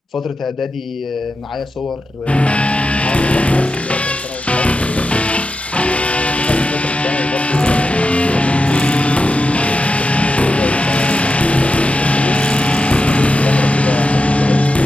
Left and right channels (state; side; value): normal; both; correlation 0.89